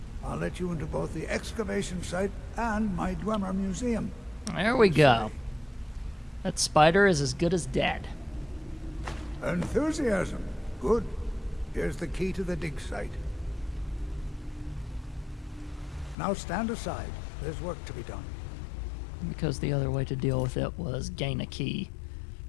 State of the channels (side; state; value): right; drops out; at 16.2 s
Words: I'll let you into both the excavation site and my Dwemer museum. There we go. That spider is as good as dead. Enthusiasm. Good. Here's the key to the dig site. Now stand aside. There's work to be done. Because the other way to deal with it was gain a key